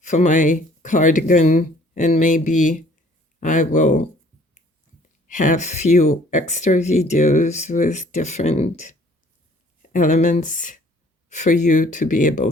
for my cardigan, and maybe I will have few extra videos with different elements for you to be able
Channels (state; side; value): normal; both; correlation 0.57